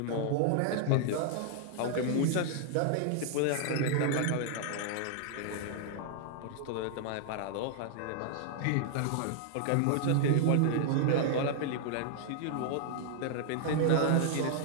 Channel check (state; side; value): different; both; correlation -0.01